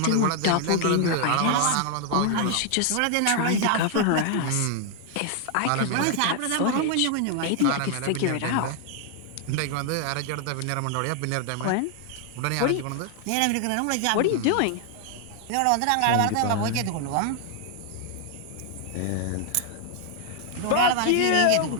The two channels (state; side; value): different; both; correlation 0.00